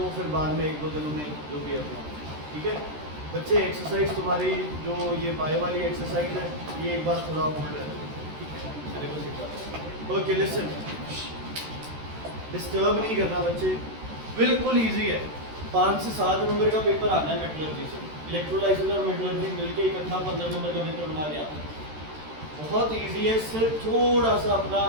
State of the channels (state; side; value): late; left; 13 ms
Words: फिर बाद में एक दो दिनों में जो भी अपना, ठीक है बच्चे। एक्सरसाइज तुम्हारी जो ये बायो वाली एक्सरसाइज है, ये एक बार थोड़ा होल्ड है, सिलेबस एक बार। ओके लिसन, डिस्टर्ब नहीं करना बच्चे, बिल्कुल इजी है। 5 से 7 नंबर का पेपर आना है मेटलर्जी से। इलेक्ट्रोलाइसिस और मेटलर्जी मिलके इकट्ठा 15 नंबर का पेपर बना दिया। बहुत इजी है, सिर्फ थोड़ा सा अपना